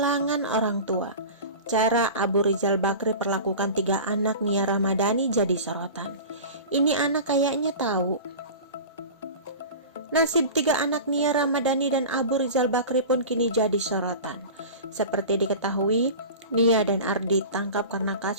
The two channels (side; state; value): both; inverted; correlation -0.35